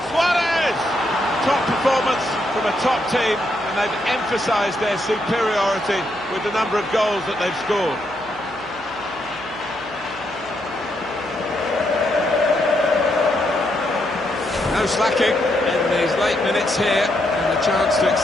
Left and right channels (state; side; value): noise; left; hum, 25 dB below the sound